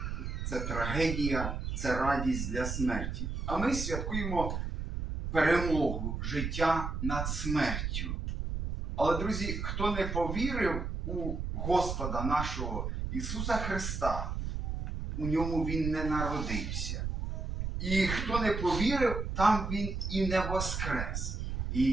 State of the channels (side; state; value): right; noise; rumble, 3 dB below the sound